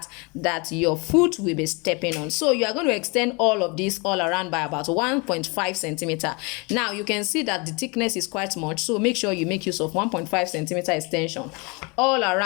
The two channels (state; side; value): quieter; right; 29.2 dB